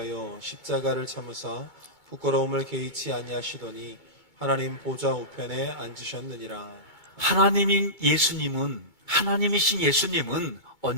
십자가를 참으사 부끄러움을 개의치 아니하시더니 하나님 보좌 우편에 앉으셨느니라. 하나님이신 예수님은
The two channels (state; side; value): late; right; 2.2 ms